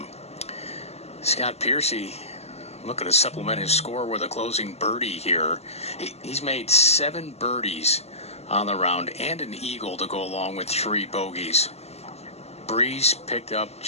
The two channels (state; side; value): late; right; 0.30 ms